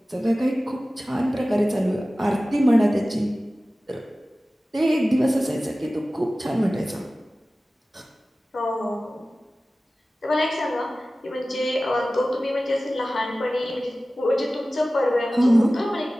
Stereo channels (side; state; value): both; normal; correlation 0.96